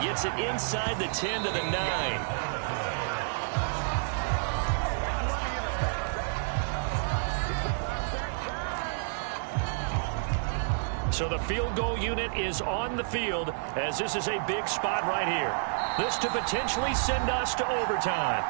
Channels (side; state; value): left; silent; digital silence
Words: gets it inside the 10 to the 9. So the field goal unit is on the field as this is a big spot right here. This to potentially send us to overtime.